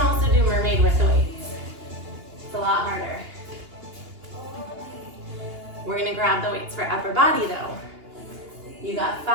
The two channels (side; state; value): left; late; 2.8 ms